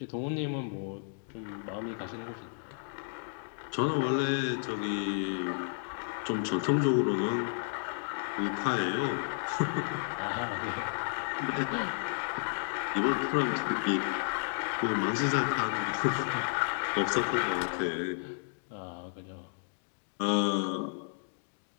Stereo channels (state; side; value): silent; right; digital silence